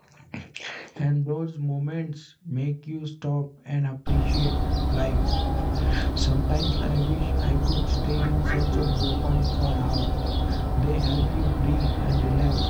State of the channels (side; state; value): both; identical; correlation 1.00